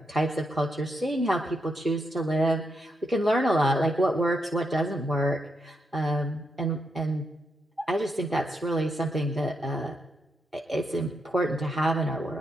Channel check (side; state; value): both; normal; correlation 0.81